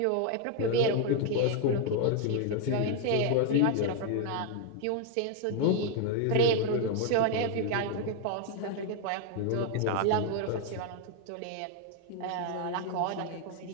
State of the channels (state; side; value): different; both; correlation 0.01